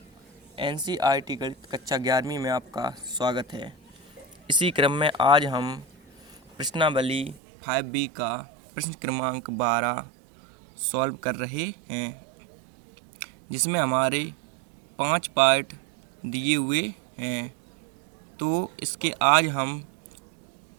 एनसीईआरटी गणित कक्षा 11वीं में आपका स्वागत है। इसी क्रम में आज हम प्रश्नावली 5B का प्रश्न क्रमांक 12 सॉल्व कर रहे हैं, जिसमें हमारे 5 पार्ट दिए हुए हैं। तो इसके आज हम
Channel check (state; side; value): drops out; left; at 7.4 s